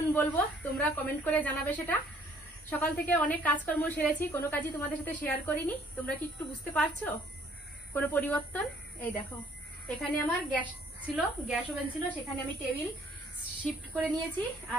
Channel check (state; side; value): normal; both; correlation 0.61